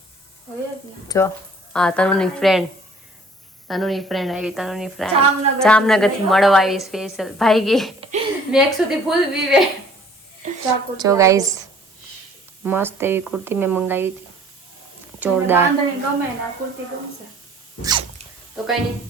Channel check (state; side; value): normal; both; correlation 0.54